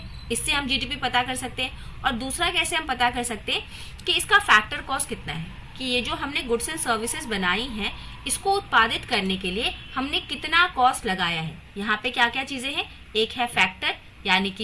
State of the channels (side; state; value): both; identical; correlation 1.00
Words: इससे हम जीडीपी पता कर सकते हैं। और दूसरा कैसे हम पता कर सकते हैं कि इसका फैक्टर कॉस्ट कितना है, कि ये जो हमने गुड्स एंड सर्विसेज बनाई हैं इसको उत्पादित करने के लिए हमने कितना कॉस्ट लगाया है। यहाँ पे क्या क्या चीजें हैं, एक है फैक्टर यानी